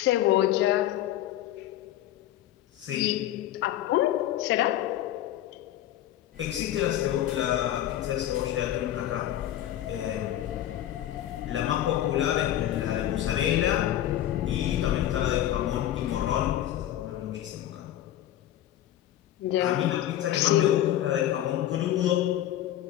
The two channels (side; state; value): right; quieter; 12.6 dB